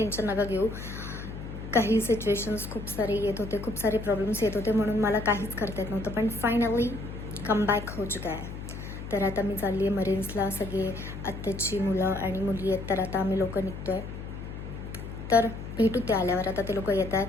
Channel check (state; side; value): noise; left; hum, 9 dB below the sound